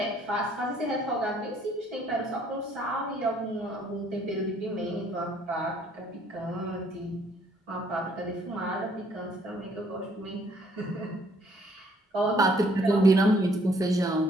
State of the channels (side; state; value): both; normal; correlation 0.64